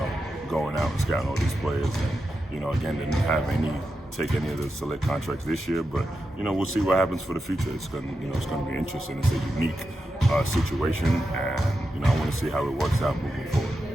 going out and scouting all these players, and again, didn't have take any of the select contracts this year, but we'll see what happens for the future. It's going to be interesting. It's a unique situation, and I want to see how it works out moving forward.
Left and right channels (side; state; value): both; normal; correlation 0.88